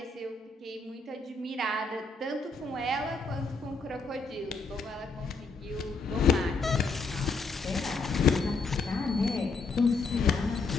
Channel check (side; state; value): right; quieter; 4.0 dB